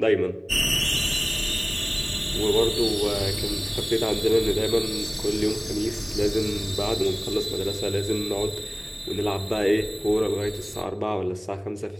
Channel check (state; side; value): identical; both; correlation 1.00